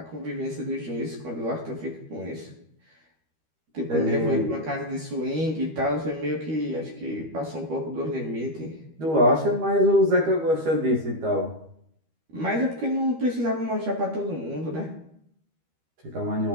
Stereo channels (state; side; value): late; left; 13 ms